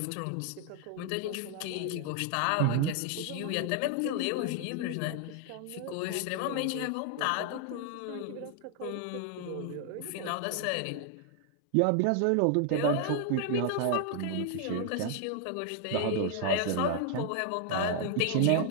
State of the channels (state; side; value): different; both; correlation 0.00